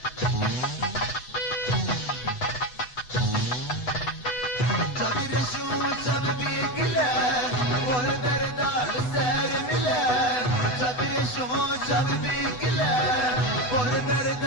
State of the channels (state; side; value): late; right; 8.0 ms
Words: जब भी गिला और